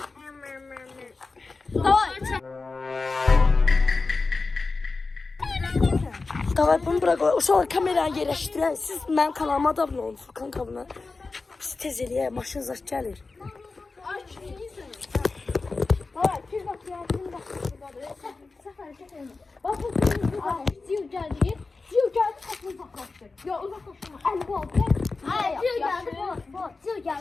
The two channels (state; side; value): quieter; right; 3.9 dB